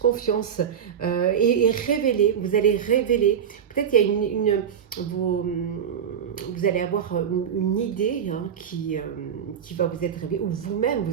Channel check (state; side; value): quieter; left; 8.2 dB